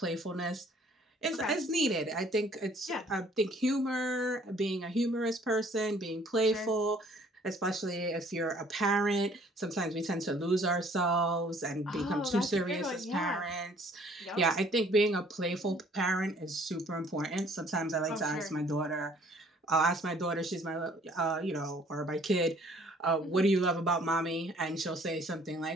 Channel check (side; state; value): both; normal; correlation 0.58